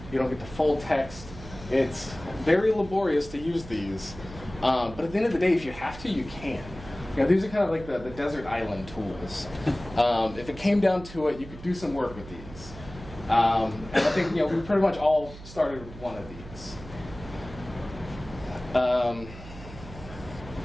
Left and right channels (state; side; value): noise; right; hum, 15 dB below the sound